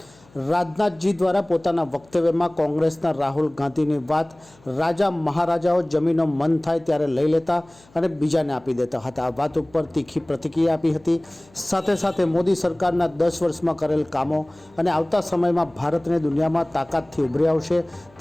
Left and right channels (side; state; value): left; noise; hum, 29 dB below the sound